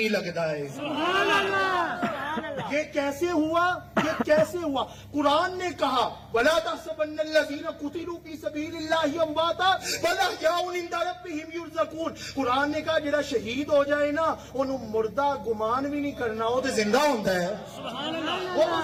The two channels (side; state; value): both; identical; correlation 1.00